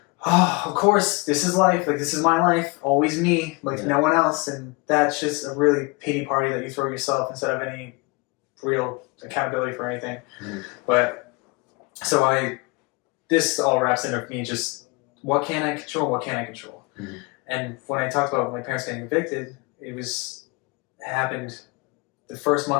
oh, of course, this is life. Like, this is my life. Always me. Like, no one else. And that's just a really pity party that you throw yourself instead of any real accountability for anything. But So this all wraps into me just what can I control, what can't I control. Mm-hmm. And when I talked about my parents getting evicted, it happened the first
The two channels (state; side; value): quieter; right; 27.9 dB